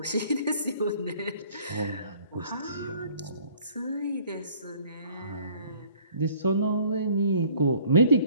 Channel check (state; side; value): inverted; both; correlation -0.56